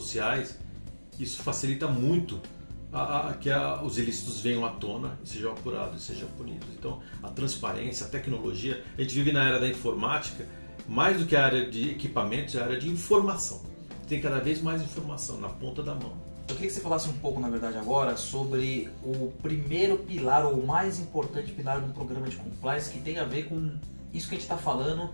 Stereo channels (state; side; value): inverted; both; correlation -1.00